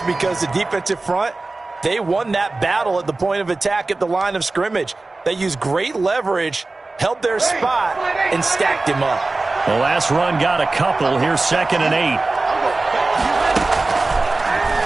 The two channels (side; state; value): left; quieter; 3.3 dB